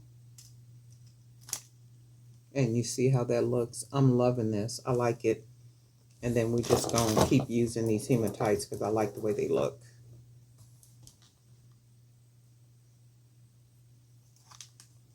And you see how that looks? I'm loving this. I like it. And then we just gonna keep using these hematites because I like the way they look.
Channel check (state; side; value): identical; both; correlation 1.00